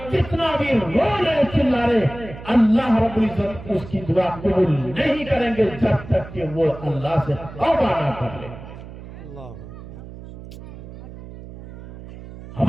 کتنا بھی رونے چلائے اللہ رب العزت اس کی دعا قبول نہیں کریں گے جب تک کہ وہ اللہ سے توبہ نہ کر لے۔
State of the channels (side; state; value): right; noise; hum, 14 dB below the sound